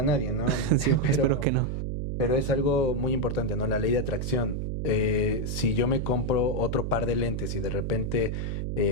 a nadie, ¿no? Sí, espero que Pero, no. pero es algo muy importante, ¿no? La ley de atracción. Si yo me compro otro par de lentes y de repente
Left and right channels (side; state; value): right; noise; hum, 2 dB below the sound